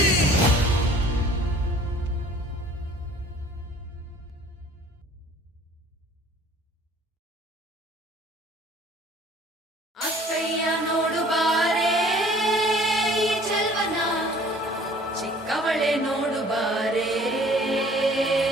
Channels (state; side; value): normal; both; correlation 0.52